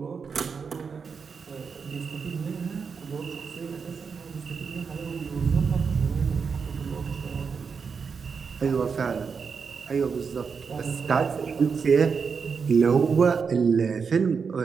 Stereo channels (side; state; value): left; quieter; 5.7 dB